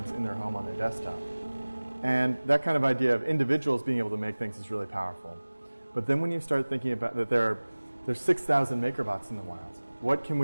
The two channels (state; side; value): inverted; both; correlation -1.00